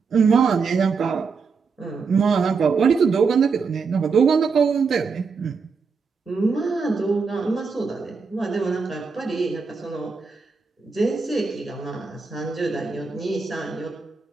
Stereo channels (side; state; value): left; quieter; 5.1 dB